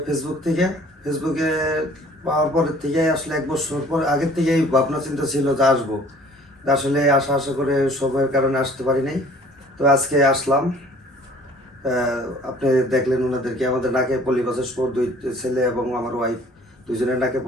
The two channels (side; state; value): both; normal; correlation 0.52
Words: ফেসবুকে পাওয়ার পরের থেকে আসলে 1 বছর পর আগের থেকেই ভাবনা চিন্তা ছিল যে আসবো, আসলে আশা করে সময়ের কারণে আসতে পারি নাই। তো আজকে আসলাম। আপনি দেখলেন ওনাদেরকে, আমাদের নাকে পলিপাসের 2 ছেলে এবং আমার ওয়াইফ দুজনের নাকে